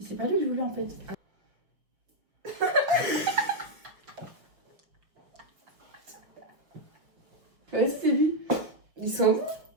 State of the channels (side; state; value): left; late; 5.7 ms